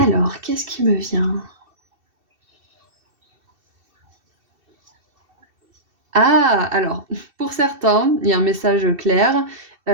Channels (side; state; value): left; late; 2.7 ms